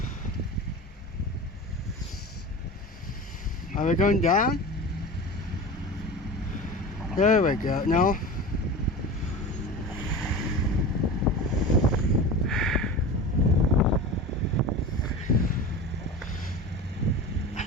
Are we going down? There we go. No.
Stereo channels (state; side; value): normal; both; correlation 0.31